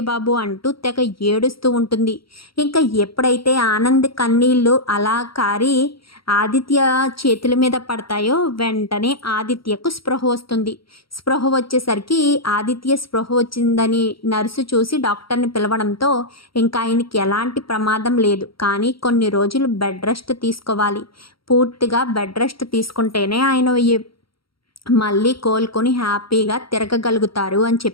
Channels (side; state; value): right; late; 0.74 ms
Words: బాబు అంటూ తెగ ఏడుస్తూ ఉంటుంది. ఇంకా ఎప్పుడైతే ఆనంద్ కన్నీళ్ళు అలా కారి ఆదిత్య చేతుల మీద పడతాయో వెంటనే ఆదిత్యకు స్పృహ వస్తుంది. స్పృహ వచ్చేసరికి ఆదిత్య స్పృహ వచ్చిందని నర్సు చూసి డాక్టర్ని పిలవడంతో ఇంకా ఆయనకి ఎలాంటి ప్రమాదం లేదు, కానీ కొన్ని రోజులు బెడ్ రెస్ట్ తీసుకోవాలి. పూర్తిగా బెడ్ రెస్ట్ తీసుకుంటేనే ఆయన మళ్ళీ కోలుకొని హ్యాపీగా తిరగగలుగుతారు అని